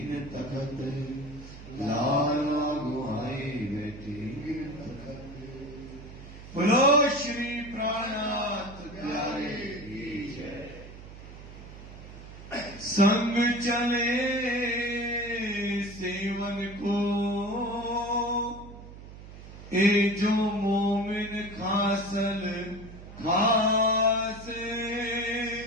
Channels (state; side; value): noise; right; hum, 15 dB below the sound